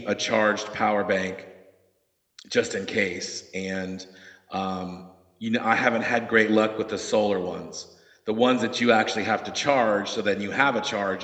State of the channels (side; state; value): both; identical; correlation 1.00